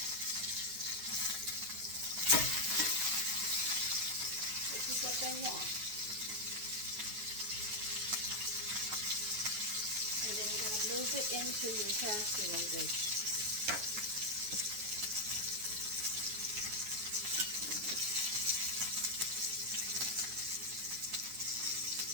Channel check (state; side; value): late; left; 9.5 ms